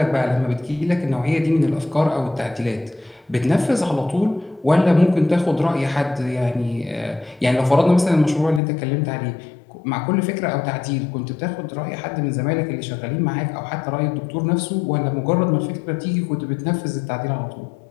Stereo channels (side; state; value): right; drops out; at 8.6 s